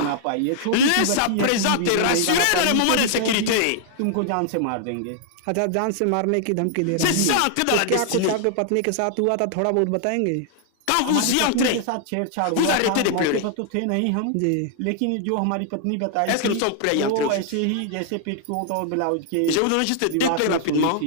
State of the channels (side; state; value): both; different; correlation 0.00